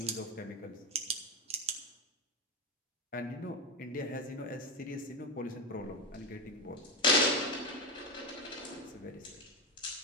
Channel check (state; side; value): normal; both; correlation 0.13